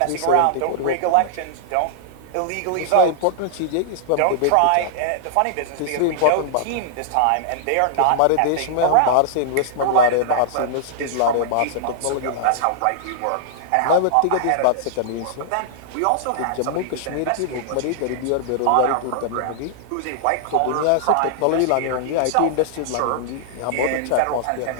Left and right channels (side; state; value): both; different; correlation -0.01